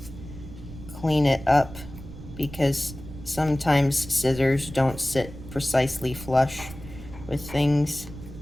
clean it up, because sometimes scissors don't sit precisely flush with things.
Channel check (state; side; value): noise; right; rumble, 14 dB below the sound